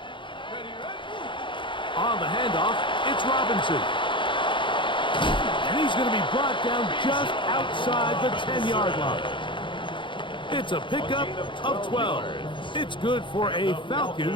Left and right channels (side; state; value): right; late; 0.24 ms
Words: Ready? On the handoff, it's Robinson. And he's going to be brought down just outside the 10-yard line. It's a pickup of 12. It's good for a